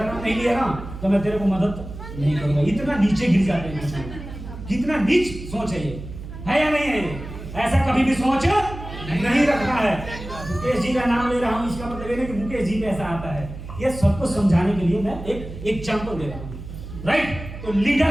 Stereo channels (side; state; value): right; noise; hum, 11 dB below the sound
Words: नाम नहीं लिया ना तो मैं तेरे को मदद नहीं करूंगा। इतना नीचे गिर जाते हैं। कितना नीच सोच है ये, है या नहीं है? ऐसा कभी भी सोच नहीं रखना है। मुकेश जी का नाम ले रहा हूँ, इसका मतलब ये नहीं कि मुकेश जी कैसा आता है। ये सबको समझाने के लिए मैं एक एग्जाम्पल दे रहा हूँ। राइट? तो